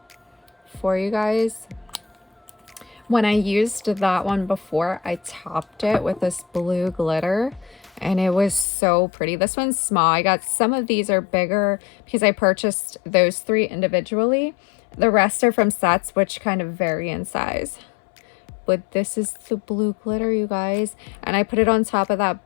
for you guys. When I used that one before, I topped it with this blue glitter and it was so pretty. This one's small. I got some of these are bigger because I purchased those 3 individually. The rest are from sets, which kind of vary in size. But this is the blue glitter, you guys. And I put it on top of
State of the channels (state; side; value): drops out; right; at 8.7 s